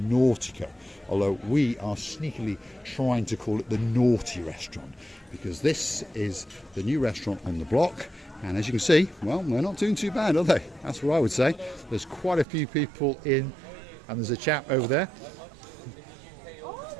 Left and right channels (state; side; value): drops out; left; at 12.5 s